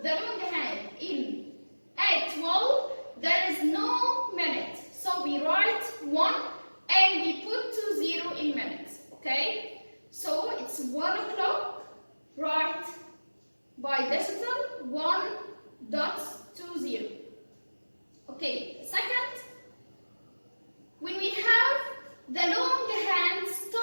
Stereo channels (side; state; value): both; inverted; correlation -1.00